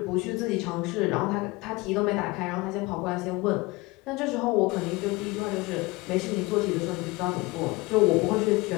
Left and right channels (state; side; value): quieter; right; 22.9 dB